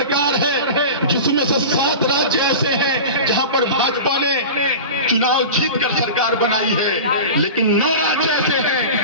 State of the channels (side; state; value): both; inverted; correlation -0.31